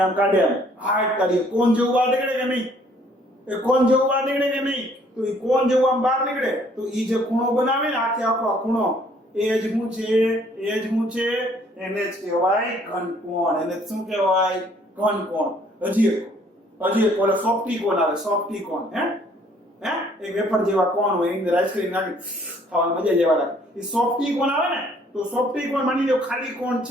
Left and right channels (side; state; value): both; normal; correlation 0.61